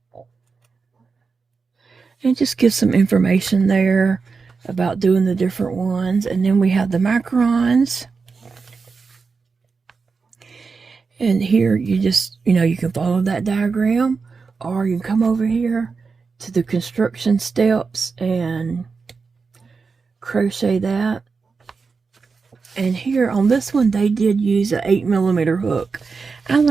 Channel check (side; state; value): left; quieter; 4.8 dB